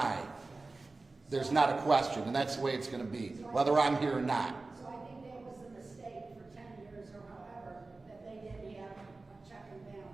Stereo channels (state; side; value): quieter; left; 3.5 dB